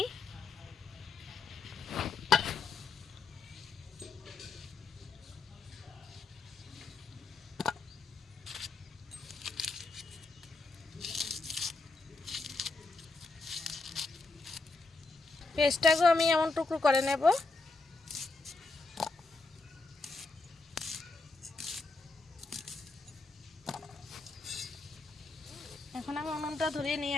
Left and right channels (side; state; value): right; quieter; 3.7 dB